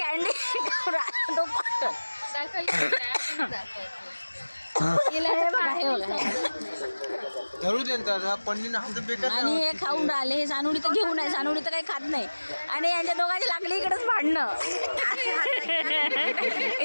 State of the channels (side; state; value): both; inverted; correlation -1.00